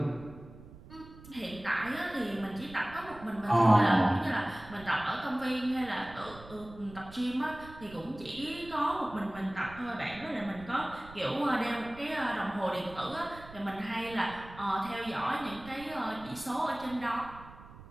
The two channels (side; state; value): right; noise; rumble, 17 dB below the sound